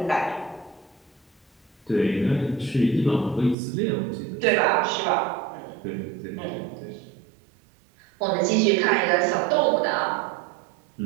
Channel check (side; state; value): left; drops out; at 3.6 s